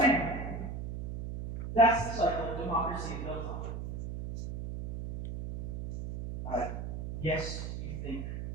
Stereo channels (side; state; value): right; noise; hum, 6 dB below the sound